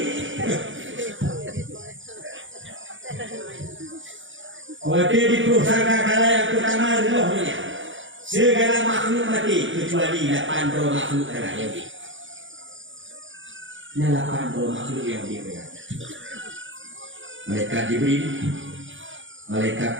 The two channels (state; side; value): late; left; 0.56 ms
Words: Waktu di pusaka kala yang pertama rohnya. Segala makhluk mati kecuali 8 makhluk yang di. 8 makhluk yang dipegang. Malaikat Jibril, malaikat